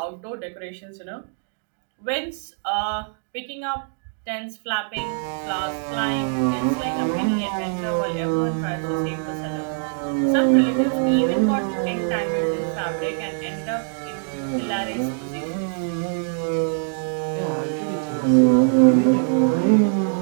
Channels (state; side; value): silent; left; digital silence